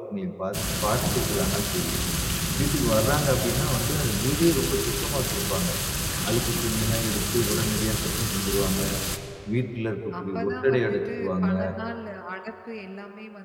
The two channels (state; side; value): identical; both; correlation 1.00